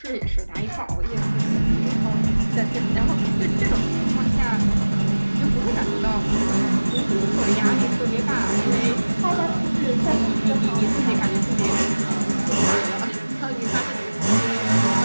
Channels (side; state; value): both; inverted; correlation -1.00